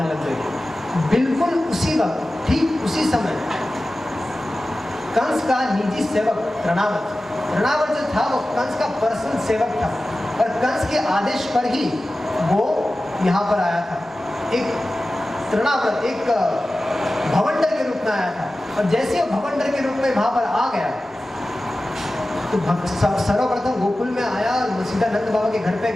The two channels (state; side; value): normal; both; correlation 0.95